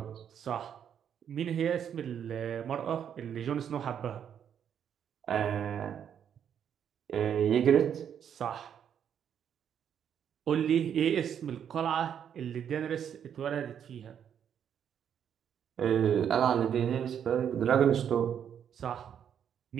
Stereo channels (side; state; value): left; quieter; 8.6 dB